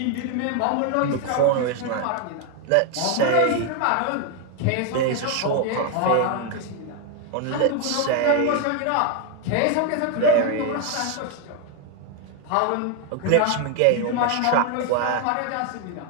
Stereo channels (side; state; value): both; different; correlation 0.01